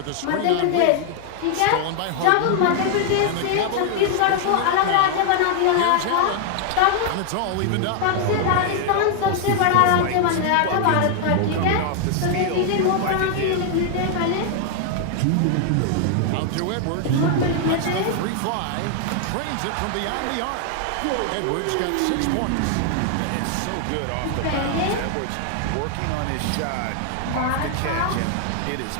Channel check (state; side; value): different; both; correlation 0.00